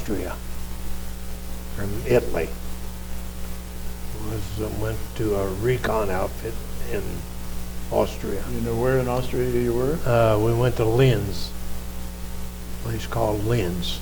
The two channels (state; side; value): identical; both; correlation 1.00